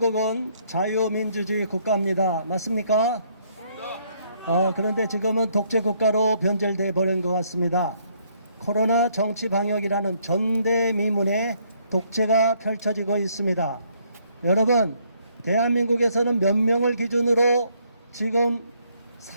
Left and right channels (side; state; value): both; inverted; correlation -0.69